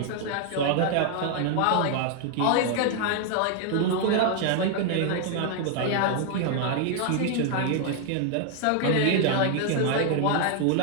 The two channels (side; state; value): both; different; correlation 0.00